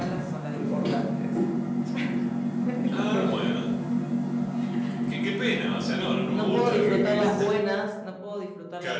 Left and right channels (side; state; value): both; identical; correlation 1.00